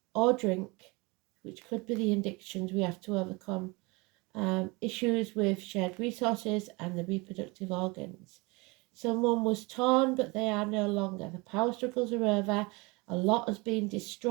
or drink, which could be the addictions we have to overcome, issues with shared resources and the reproductive organs. Someone was torn, but they are no longer. The power struggles are over. A lot has been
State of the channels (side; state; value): left; quieter; 26.1 dB